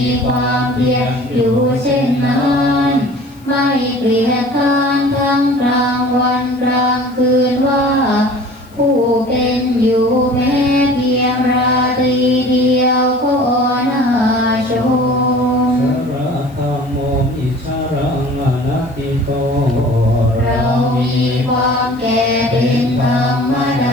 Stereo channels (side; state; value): left; noise; hiss, 30 dB below the sound